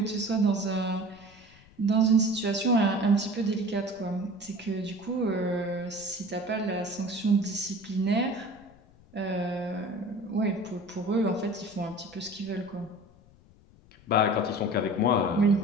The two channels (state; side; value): noise; left; rumble, 26 dB below the sound